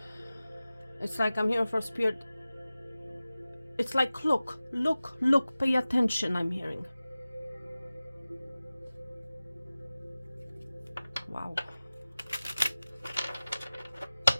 It's like I'm hearing for Spirit. It's like, look, pay attention, I'm hearing. Wow.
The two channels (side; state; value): both; inverted; correlation -0.97